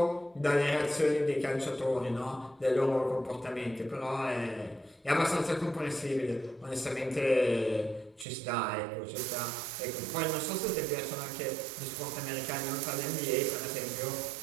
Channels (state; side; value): drops out; left; at 8.2 s